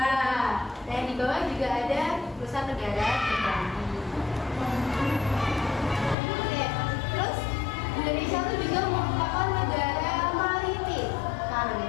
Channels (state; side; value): drops out; right; at 6.2 s